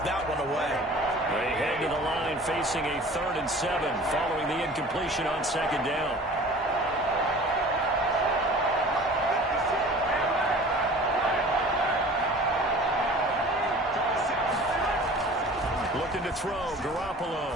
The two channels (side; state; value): both; normal; correlation 0.44